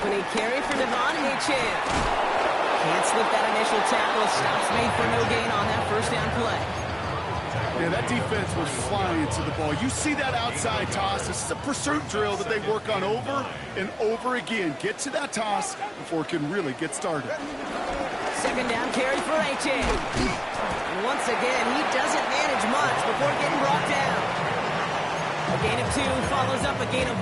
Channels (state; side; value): identical; both; correlation 1.00